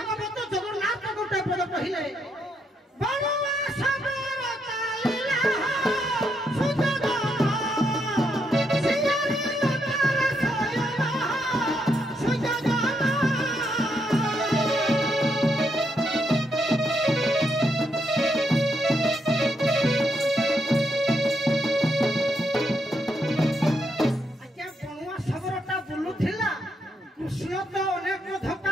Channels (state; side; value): normal; both; correlation 0.78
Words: ଜଗନ୍ନାଥ ଗୋଟେ ପଦ କହିଲେ ବଳୁଆ ସବର ଚାଲିଲା ସୁଯୋଗ ସିଆରି ନଦର ସୟନ ସୁଯୋଗ କୃଷ୍ଣ ତ ଅନେକ